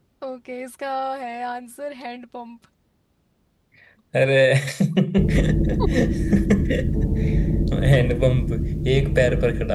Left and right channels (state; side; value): identical; both; correlation 1.00